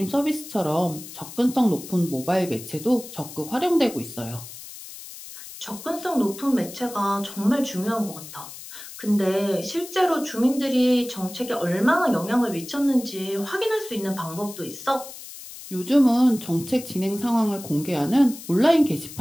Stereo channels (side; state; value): left; noise; hiss, 14 dB below the sound